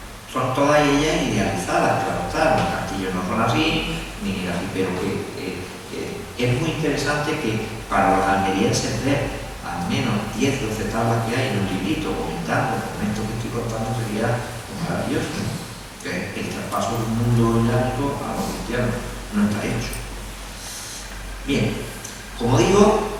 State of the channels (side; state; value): both; identical; correlation 1.00